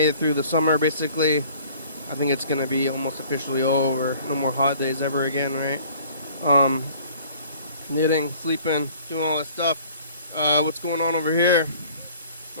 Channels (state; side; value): inverted; both; correlation -0.51